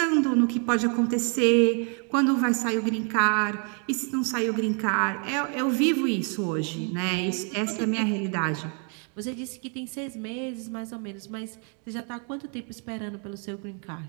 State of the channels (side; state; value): left; quieter; 39.5 dB